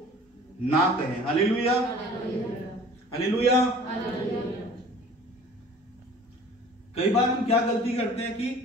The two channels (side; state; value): both; normal; correlation 0.47